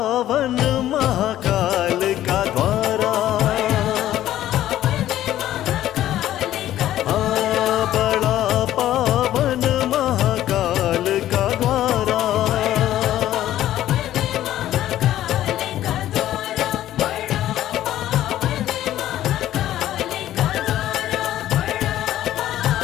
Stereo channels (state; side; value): quieter; right; 13.0 dB